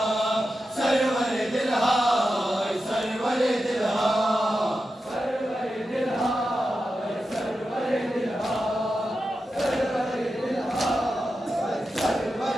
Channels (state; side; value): normal; both; correlation 0.90